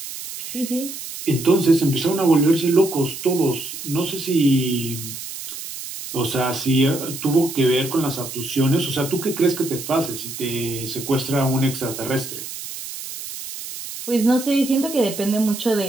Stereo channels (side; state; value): right; noise; hiss, 9 dB below the sound